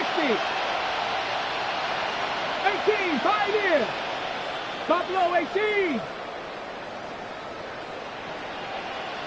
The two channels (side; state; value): both; identical; correlation 1.00